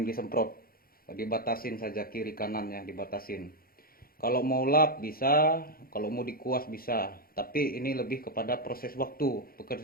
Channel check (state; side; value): late; right; 0.43 ms